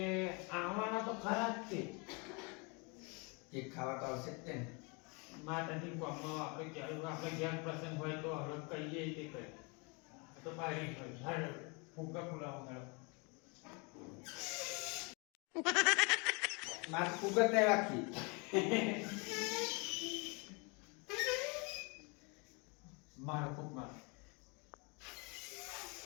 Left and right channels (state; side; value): quieter; right; 31.2 dB